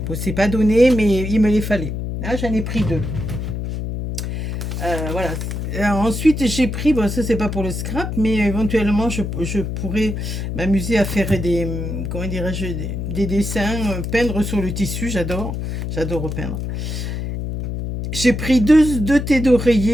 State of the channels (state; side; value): noise; left; hum, 4 dB below the sound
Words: bon, c'est pas donné, mais il me les fallait. Là, j'en ai pris deux. Voilà. Ensuite, j'ai pris, bon, ça c'est pas pour le scrap, mais éventuellement, je pourrais m'amuser à faire comment dirais-je, des dessins, peindre sur le tissu, j'adore repeindre. J'ai pris deux thés